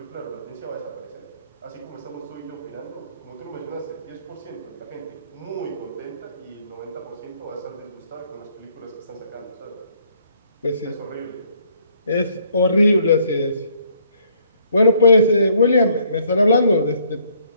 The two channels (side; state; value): both; inverted; correlation -0.65